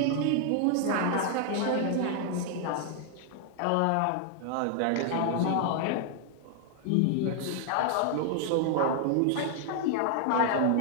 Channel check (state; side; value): different; both; correlation 0.00